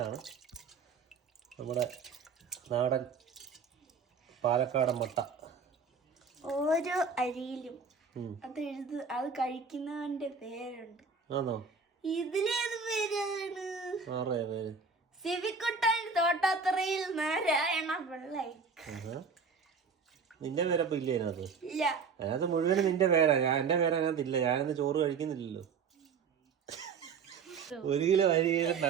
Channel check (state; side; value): quieter; left; 5.4 dB